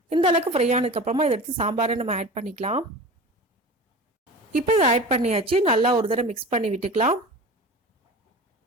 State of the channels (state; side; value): normal; both; correlation 0.34